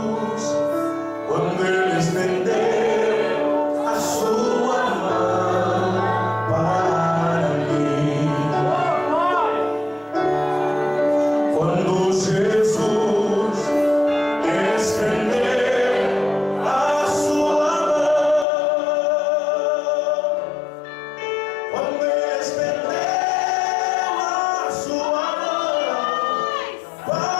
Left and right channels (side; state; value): right; drops out; at 18.4 s